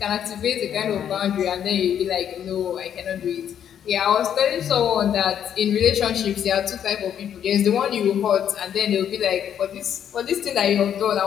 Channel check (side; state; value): right; quieter; 9.3 dB